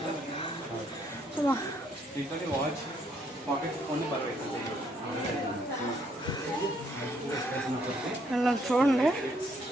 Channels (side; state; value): both; normal; correlation 0.69